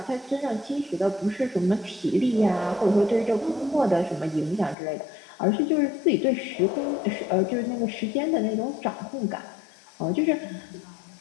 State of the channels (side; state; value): right; drops out; at 4.8 s